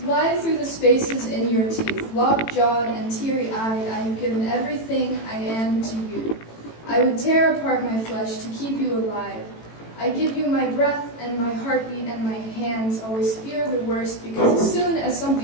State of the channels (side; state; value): right; late; 18 ms